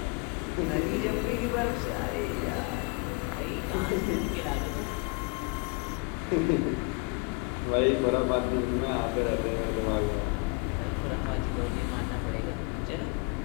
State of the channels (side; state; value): right; quieter; 29.4 dB